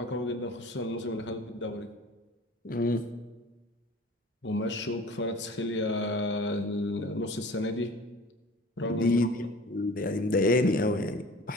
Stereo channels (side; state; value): both; normal; correlation 0.43